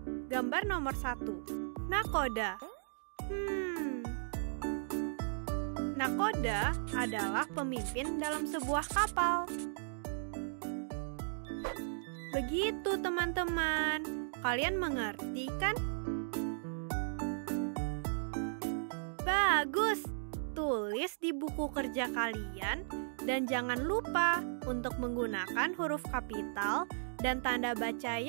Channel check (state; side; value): silent; left; digital silence